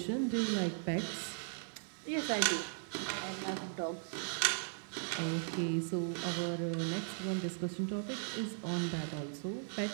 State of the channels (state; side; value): silent; left; 53 dB below the other